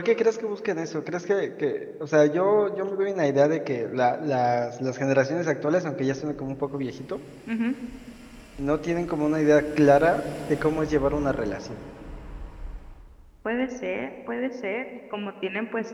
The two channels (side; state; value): both; identical; correlation 1.00